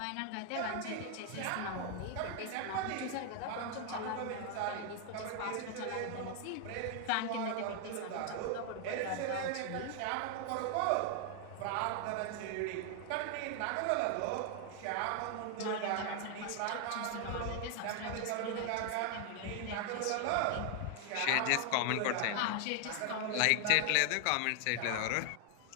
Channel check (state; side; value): different; both; correlation 0.00